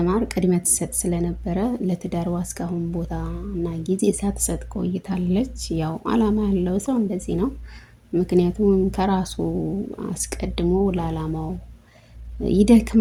ቅድሚያ ትሰጥ ስለነበረ ለትዳሯ እስካሁን ቦታ እና ጊዜ ሳትሰጥ ቆይታለች። ያው አላማ ያለው ሰው እንደዚህ ነው። ምክንያቱም ከራሱ አስቀድሞ ለአላማው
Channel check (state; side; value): identical; both; correlation 1.00